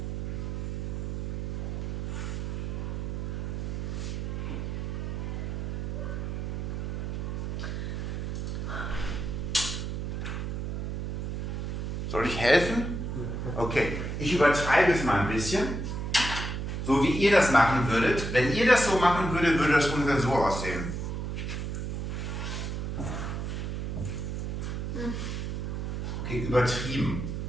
Soll ich helfen? Okay, ich übertreibe es mal ein bisschen. So wie ihr das machen würdet. Wenn ihr das so machen würdet, würde das ungefähr so aussehen. Okay, übertrieben.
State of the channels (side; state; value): right; noise; hum, 3 dB below the sound